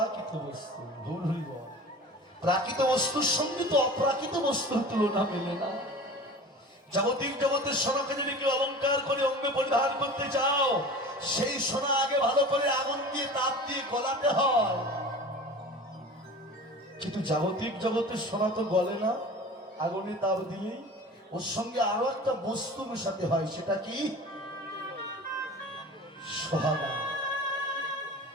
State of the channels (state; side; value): normal; both; correlation 0.38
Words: বস্তু। গৌর হরি বল। প্রাকৃত বস্তুর সঙ্গে তো অপ্রাকৃত বস্তুর তুলনা মেলে না। জাগতিক জগতের সোনাকে যদি কেউ অলঙ্কার করে অঙ্গে পরিধান করতে চাও, সেই সোনা আগে ভালো করে আগুন দিয়ে তাপ দিয়ে গলাতে হয়। কিন্তু জাগতিক জগতের সোনা তো গলে না, আগুনে তাপ দিলেই। ওর সঙ্গে আরো একটা বস্তু মেশাতে হয়, সেটা কি? সোহাগা।